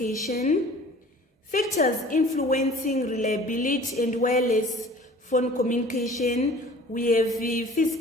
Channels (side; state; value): both; normal; correlation 0.47